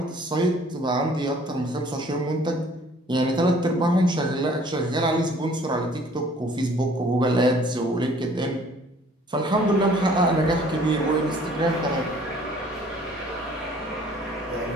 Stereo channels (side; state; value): both; normal; correlation 0.55